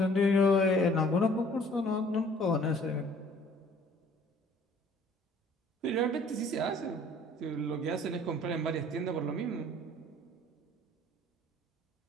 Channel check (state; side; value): normal; both; correlation 0.55